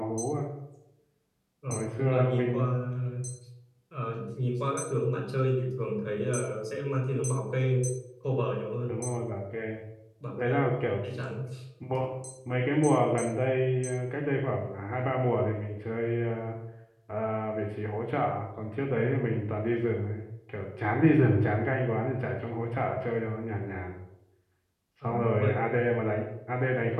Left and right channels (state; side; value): identical; both; correlation 1.00